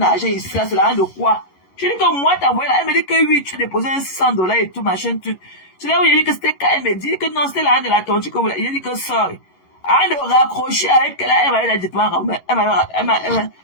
ici, là, c'est l'argent de quoi? Je dis que moi, t'as envoyé là. Elle me dit que oui, tu as déposé $600 et tout, machin, tout. C'est là où il a dit que c'était quand elle me dit que non, c'était l'argent de la tontu que vous l'avez. Il a dit que sorry. Avant de raccrocher avec elle, elle m'avait dit,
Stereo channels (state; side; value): late; right; 11 ms